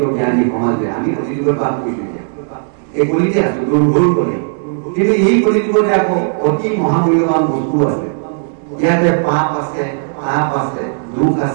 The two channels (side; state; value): left; silent; digital silence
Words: জ্ঞানী সমাজে আমি কলিযুগত পাপ কৰিছো। এই কলিতে আছো, দুৰ্ভুল কলি। কিন্তু এই কলিযুগতে আকৌ অতি মহামূল্যৱান বস্তু আছে। ইয়াতে পাপ আছে, তাপ আছে, দুখ